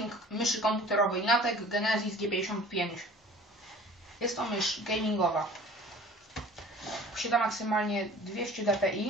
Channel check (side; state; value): both; normal; correlation 0.46